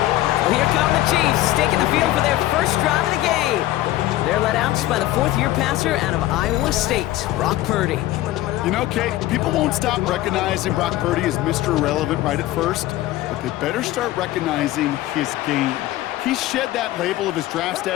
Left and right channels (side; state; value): right; quieter; 15.6 dB